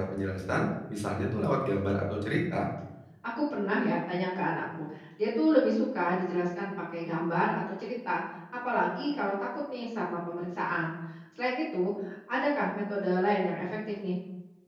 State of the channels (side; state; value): both; identical; correlation 1.00